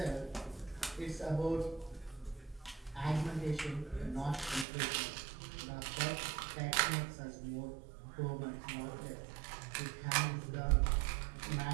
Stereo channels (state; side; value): drops out; left; at 4.7 s